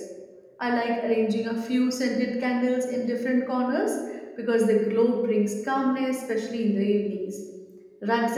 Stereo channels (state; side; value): identical; both; correlation 1.00